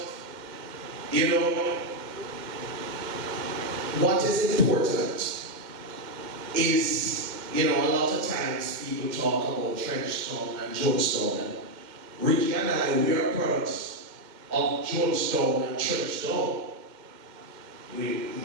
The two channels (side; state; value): left; late; 2.1 ms